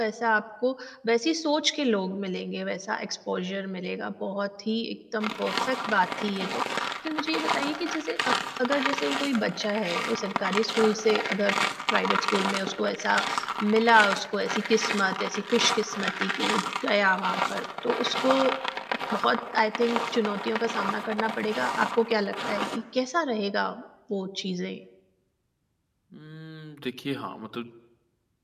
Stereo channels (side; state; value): both; identical; correlation 1.00